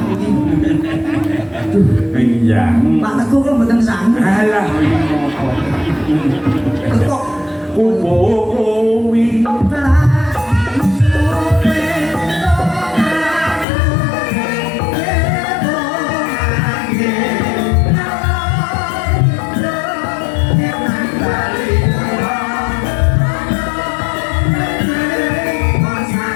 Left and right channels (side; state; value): right; drops out; at 13.7 s